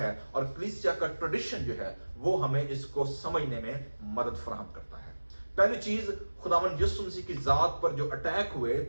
और कलीसिया का ट्रेडिशन जो है वो हमें इसको समझने में मदद फराहम करता है। पहली चीज, खुदावंद यीशु मसीह की जात पर जो अटैक हुए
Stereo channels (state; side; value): inverted; both; correlation -1.00